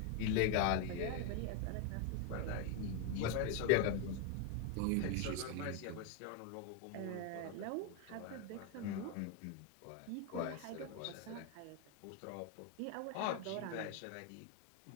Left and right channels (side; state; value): both; different; correlation 0.01